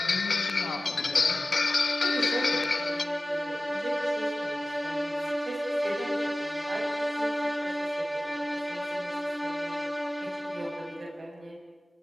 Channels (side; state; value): both; normal; correlation 0.97